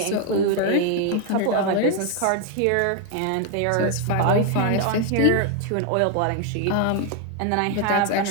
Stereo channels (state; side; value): different; both; correlation 0.00